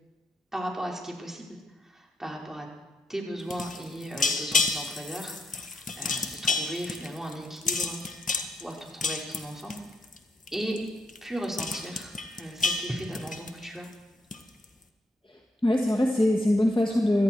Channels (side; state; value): both; normal; correlation 0.80